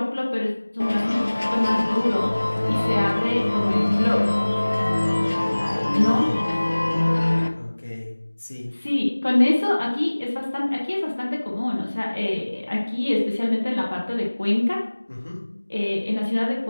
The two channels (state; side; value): inverted; both; correlation -1.00